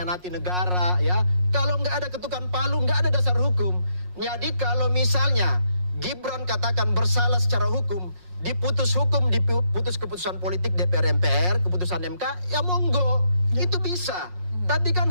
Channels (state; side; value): late; left; 5.5 ms